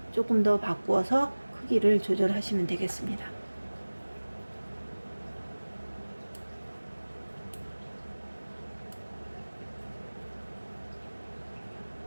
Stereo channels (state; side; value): inverted; both; correlation -1.00